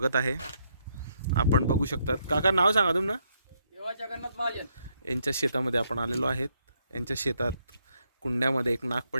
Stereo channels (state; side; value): inverted; both; correlation -0.75